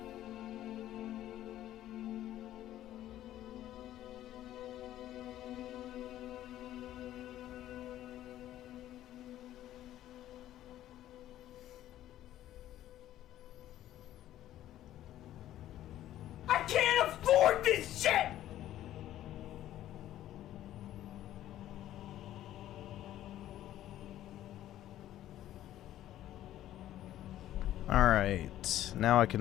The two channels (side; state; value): right; quieter; 13.0 dB